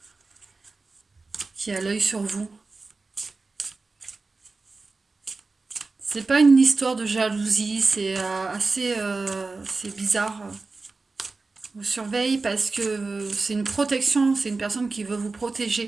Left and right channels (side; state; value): left; quieter; 3.8 dB